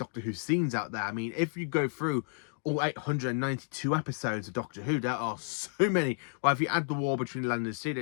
Who scenes out there. I mean, if you go through all 892 episodes of Doctor Who, there are so many. Well, if you add the war between Land and Sea, it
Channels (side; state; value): right; silent; digital silence